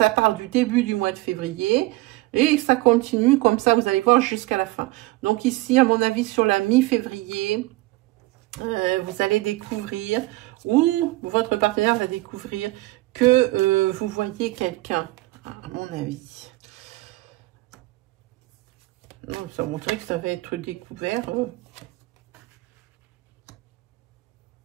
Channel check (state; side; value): quieter; left; 20.3 dB